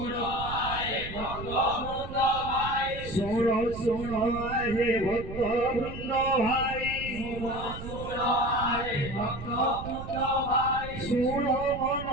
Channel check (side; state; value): right; noise; rumble, 10 dB below the sound